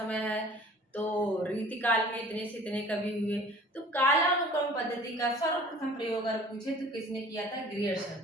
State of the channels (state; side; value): normal; both; correlation 0.47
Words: है, तो रीति काल में इतने से इतने कवि हुए। तो कालानुक्रम पद्धति का सर्वप्रथम प्रयोग अगर पूछे तो किसने किया था,